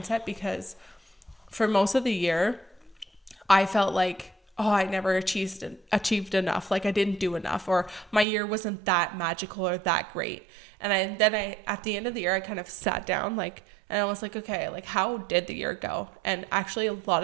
because for most of the year, I felt like, oh, I never achieved enough. Like I didn't do enough, or my year wasn't that magical or that great. And then at the end of the year, I kind of sat down and I was like, okay, like how did the year go? And actually a lot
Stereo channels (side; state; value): left; drops out; at 8.2 s